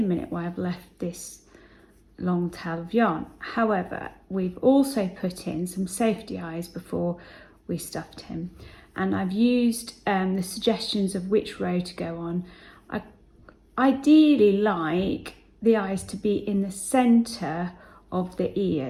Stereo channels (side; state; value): both; identical; correlation 1.00